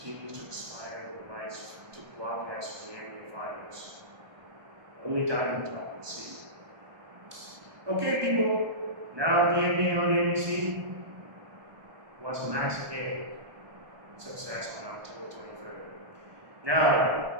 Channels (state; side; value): late; left; 1.2 ms